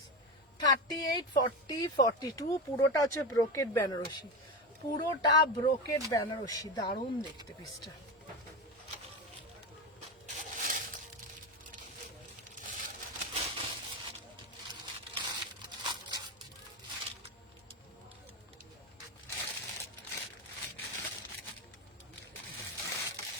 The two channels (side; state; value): both; normal; correlation 0.19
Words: 38, 40, 42 পুরোটা হচ্ছে ব্রোকেট বেনারসি, পুরোটা ব্রোকেট বেনারসি, দারুণ দেখতে পিসটা।